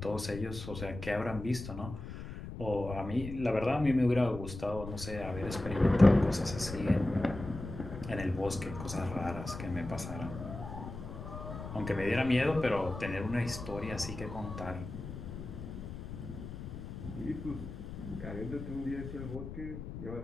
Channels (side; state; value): left; noise; rumble, 9 dB below the sound